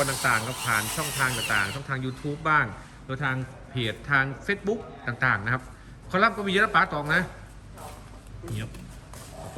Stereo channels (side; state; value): both; identical; correlation 1.00